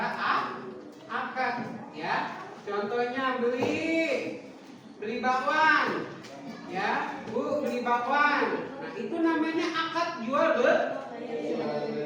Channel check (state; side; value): identical; both; correlation 1.00